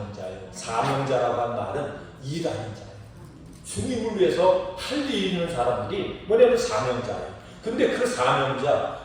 사명자라고 한 말은 일하는 자예요. 주님을 위해서 할 일 있는 사람들이 뭐냐면 사명자예요. 근데 그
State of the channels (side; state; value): both; identical; correlation 1.00